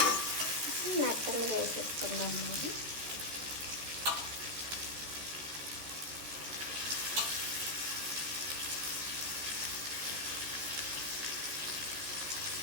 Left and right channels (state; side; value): late; left; 14 ms